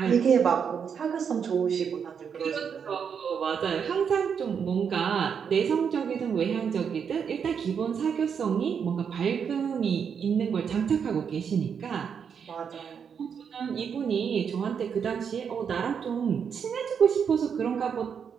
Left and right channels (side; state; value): left; quieter; 7.0 dB